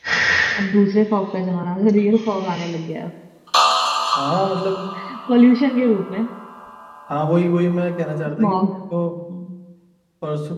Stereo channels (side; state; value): both; identical; correlation 1.00